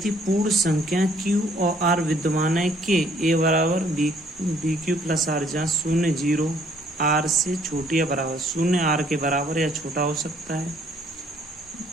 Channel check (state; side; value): noise; left; rumble, 29 dB below the sound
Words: पूर्ण संख्या क्यू और आर विद्यमान है कि ए बराबर बी क्यू प्लस आर, जहाँ शून्य 0 आर से छोटी या बराबर, शून्य आर के बराबर या छोटा हो सकता है,